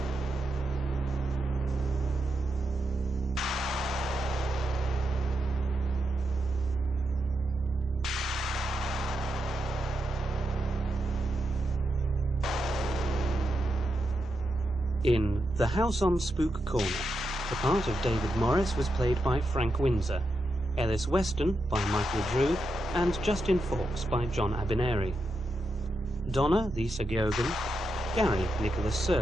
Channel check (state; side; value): normal; both; correlation 0.85